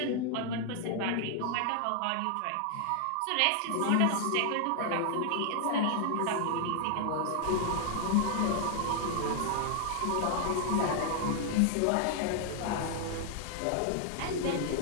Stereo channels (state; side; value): different; both; correlation 0.00